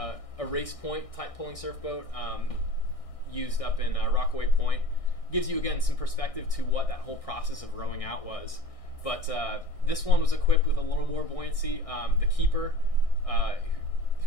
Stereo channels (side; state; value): right; late; 1.6 ms